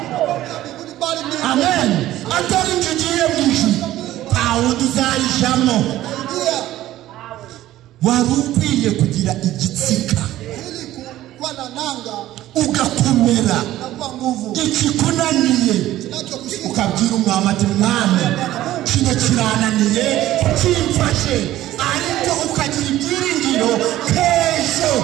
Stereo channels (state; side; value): quieter; left; 14.5 dB